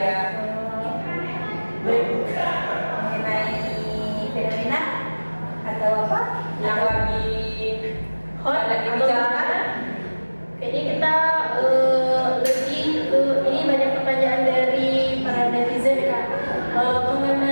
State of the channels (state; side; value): inverted; both; correlation -1.00